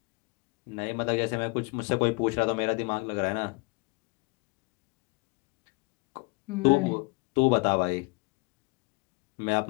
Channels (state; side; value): quieter; right; 29.5 dB